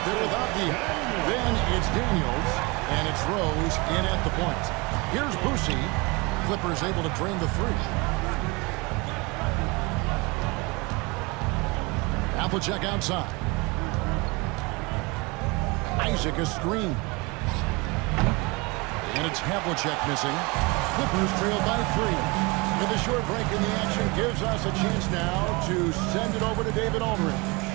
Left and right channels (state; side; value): quieter; left; 26.5 dB